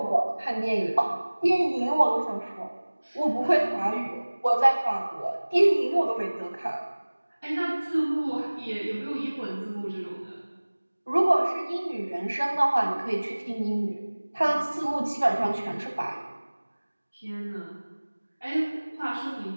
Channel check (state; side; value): inverted; both; correlation -1.00